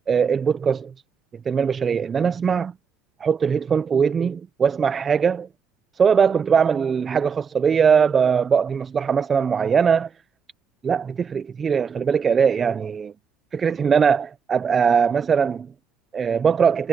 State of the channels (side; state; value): left; quieter; 6.4 dB